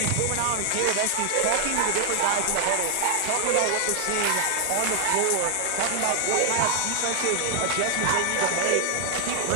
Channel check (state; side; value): different; both; correlation 0.00